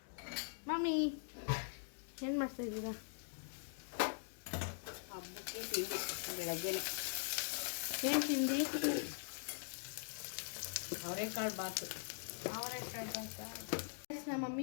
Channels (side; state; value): right; silent; digital silence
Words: ಮಮ್ಮಿ ಏನು ಮಾಡ್ತಾ ಇದ್ದೀರಾ? ಹಬ್ಬಕ್ಕೆ ತಿಂಡಿ ಬೆಳಗ್ಗೆ ಏನು ತಿಂಡಿ? ಅವರೆಕಾಳು ಬಾತು. ನಮ್ಮ